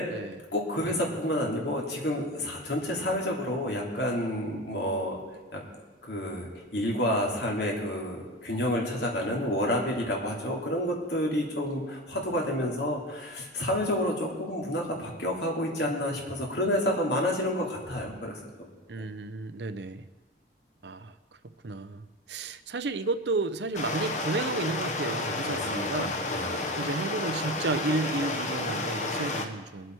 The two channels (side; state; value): both; normal; correlation 0.25